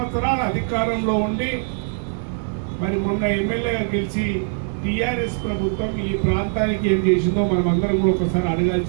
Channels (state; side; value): silent; left; 64 dB below the other